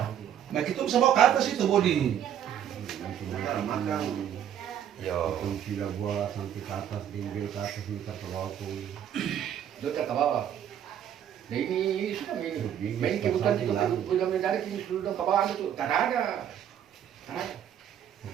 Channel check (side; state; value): left; quieter; 9.8 dB